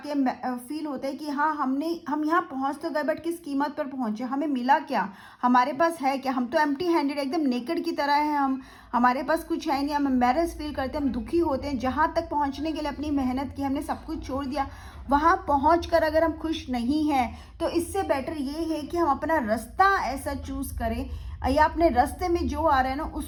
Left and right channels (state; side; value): identical; both; correlation 1.00